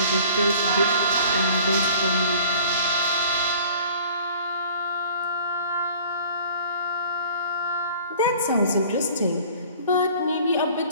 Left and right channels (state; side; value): inverted; both; correlation -0.50